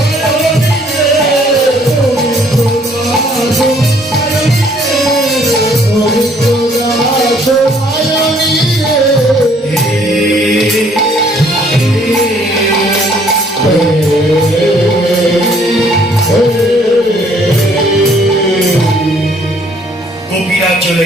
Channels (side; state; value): both; normal; correlation 0.62